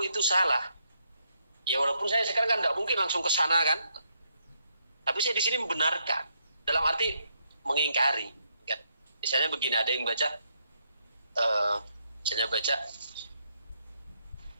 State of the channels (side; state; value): both; inverted; correlation -0.76